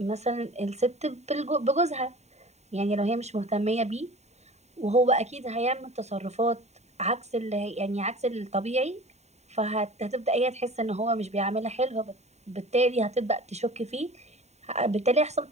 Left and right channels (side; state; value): left; late; 0.32 ms